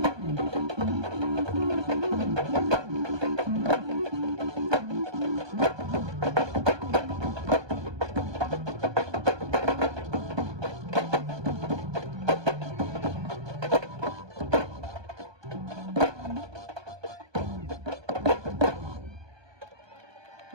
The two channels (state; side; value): late; left; 1.2 ms